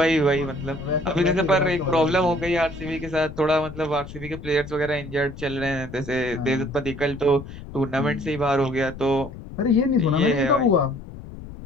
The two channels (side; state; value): left; noise; rumble, 13 dB below the sound